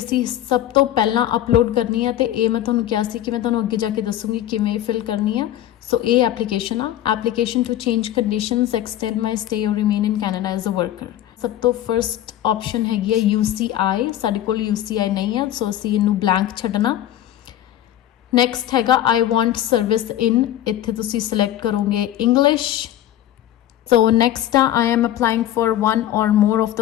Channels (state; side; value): quieter; right; 12.6 dB